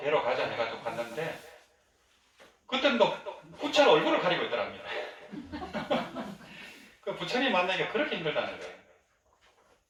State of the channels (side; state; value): both; identical; correlation 1.00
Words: 가자 해가지고 갔는데 그때는 또 부처는 얼굴을 가리고 있더랍니다. 그 부처님 만나기가 그렇게 힘들다는 거예요.